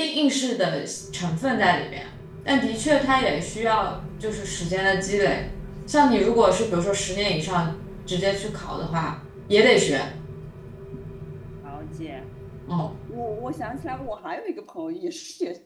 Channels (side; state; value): both; identical; correlation 1.00